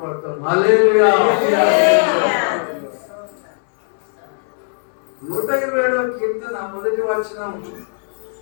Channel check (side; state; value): right; silent; 67 dB below the other